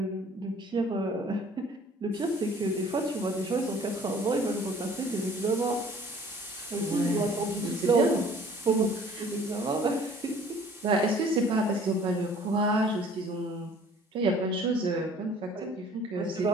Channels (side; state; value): both; normal; correlation 0.53